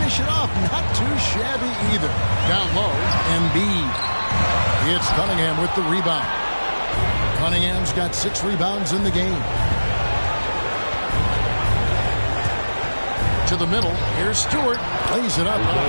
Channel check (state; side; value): inverted; both; correlation -1.00